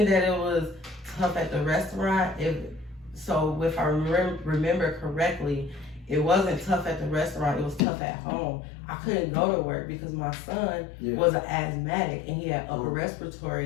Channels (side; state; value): right; drops out; at 7.8 s